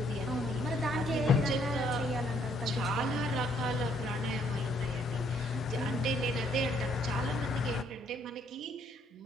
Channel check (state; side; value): normal; both; correlation 0.68